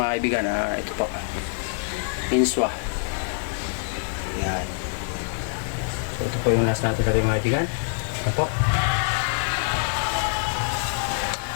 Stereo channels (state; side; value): silent; right; digital silence